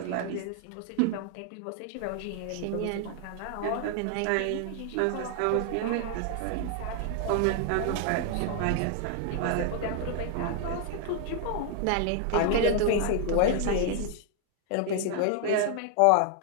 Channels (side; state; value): both; different; correlation 0.00